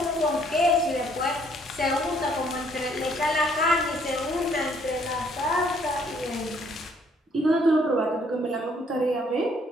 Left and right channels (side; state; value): both; normal; correlation 0.64